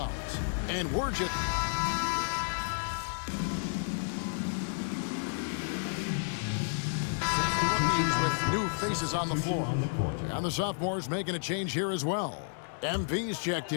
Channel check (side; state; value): right; silent; 57 dB below the other